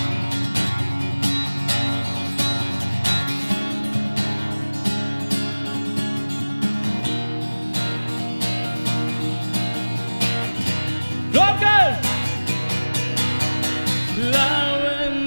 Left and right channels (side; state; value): both; inverted; correlation -1.00